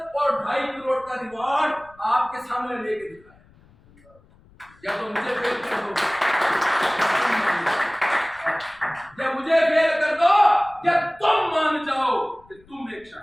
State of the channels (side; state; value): left; noise; rumble, 28 dB below the sound